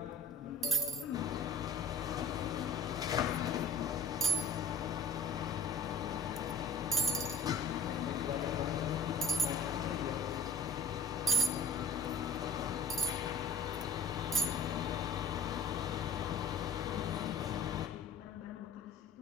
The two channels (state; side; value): quieter; right; 3.4 dB